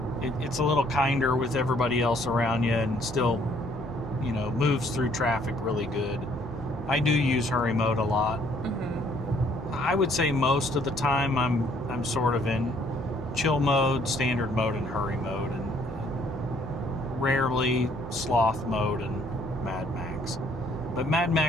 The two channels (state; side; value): normal; both; correlation 0.64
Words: it's a little kinder with everybody else around you and still, you know, moves through traffic really good. I do use hurry mode a lot. I would say most of the time I'm sort of in chill mode, standard mode, and hurry mode, and rarely sloth mode and Mad Max. But Mad